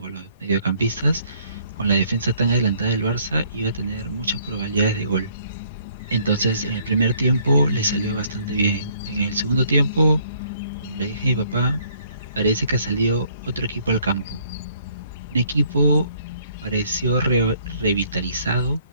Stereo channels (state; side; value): inverted; both; correlation -0.63